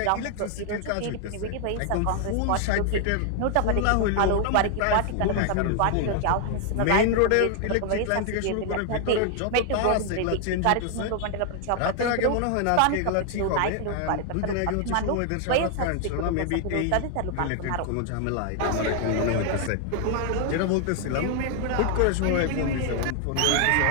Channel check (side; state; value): both; different; correlation 0.00